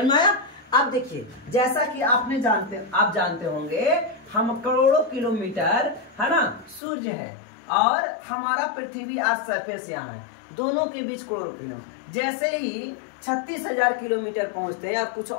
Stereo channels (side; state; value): right; drops out; at 6.8 s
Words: में आया। अब देखिए, जैसा कि आप जानते होंगे, हम करोड़ों किलोमीटर है ना सूर्य है, और हमारा पृथ्वी आज सरफेस यहाँ है, दोनों के बीच करोड़ों किलोमीटर। जैसे ही 36,000 किलोमीटर पहुंचते हैं या कुछ